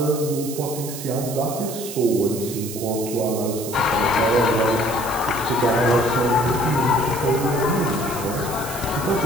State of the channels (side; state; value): right; noise; hiss, 10 dB below the sound